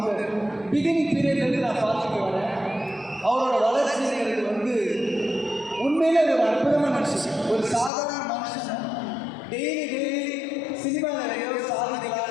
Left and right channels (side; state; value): right; drops out; at 7.9 s